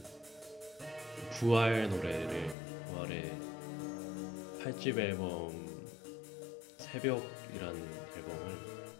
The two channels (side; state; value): right; drops out; at 2.6 s